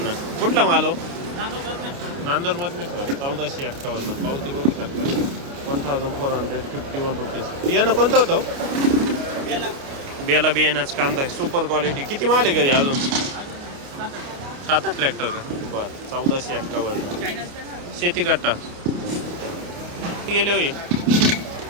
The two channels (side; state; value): left; late; 29 ms